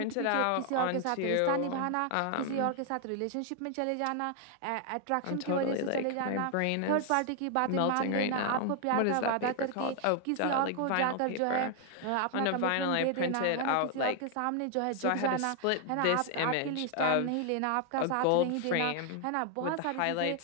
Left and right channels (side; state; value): both; different; correlation 0.00